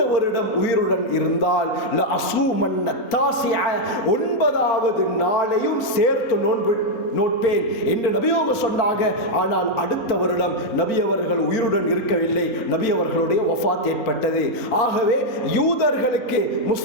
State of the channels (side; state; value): right; late; 4.3 ms